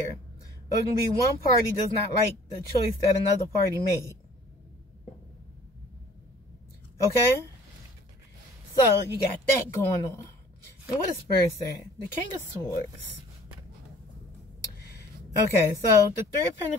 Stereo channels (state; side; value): normal; both; correlation 0.52